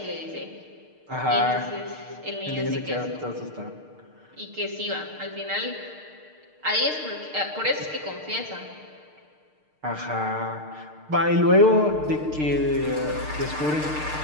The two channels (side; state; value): left; late; 6.6 ms